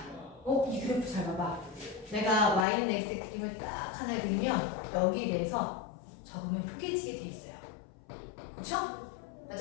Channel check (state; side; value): drops out; right; at 2.7 s